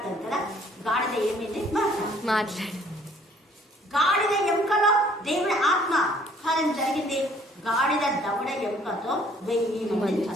కదా. గాడిద ఏమైంది మాట్లాడు. గాడిద ఎముకలో దేవుని ఆత్మ కార్యం జరిగింది. గాడిద దవడ ఎముకతో 1000 మంది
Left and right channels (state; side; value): normal; both; correlation 0.60